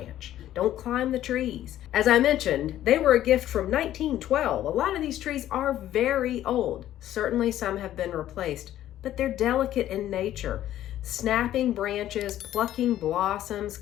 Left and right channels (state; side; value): quieter; right; 12.7 dB